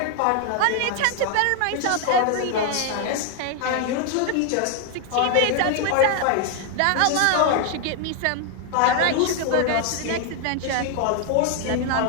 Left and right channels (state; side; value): different; both; correlation 0.00